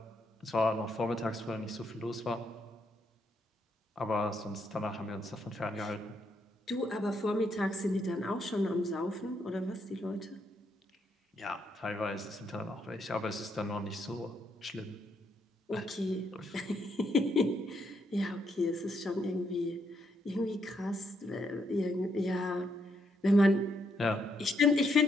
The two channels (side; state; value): both; normal; correlation 0.76